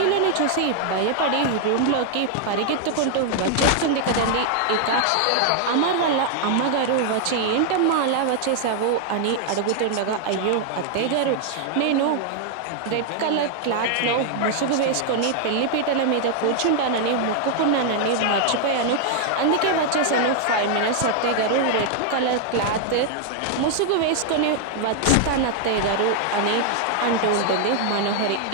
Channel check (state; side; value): different; both; correlation 0.00